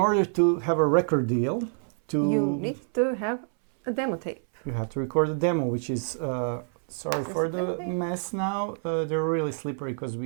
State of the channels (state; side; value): silent; left; 60 dB below the other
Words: to have a record deal, you need to have a demo tape. You have to record a demo, which is, sorry for the mess now, they're really slippery because